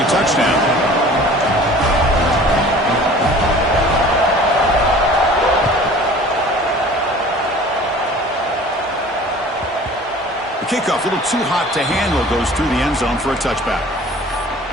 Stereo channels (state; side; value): normal; both; correlation 0.46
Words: touchdown. Kickoff, a little too hot to handle, goes through the end zone for a touchback.